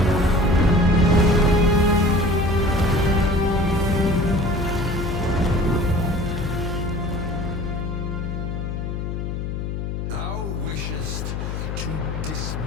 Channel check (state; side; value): noise; left; hum, 4 dB below the sound